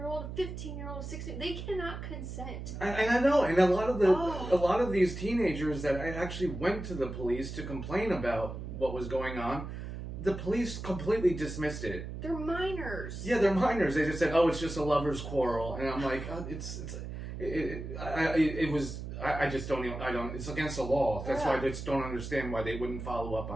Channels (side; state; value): right; noise; hum, 8 dB below the sound